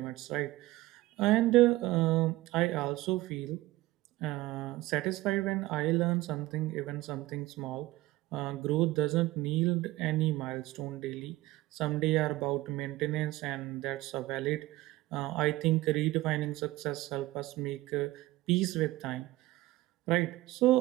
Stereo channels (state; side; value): quieter; left; 18.1 dB